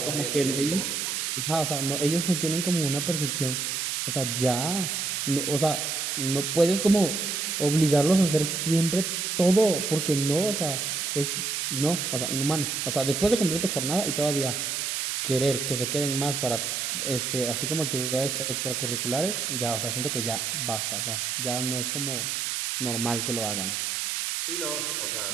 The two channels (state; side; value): noise; right; hiss, 1 dB below the sound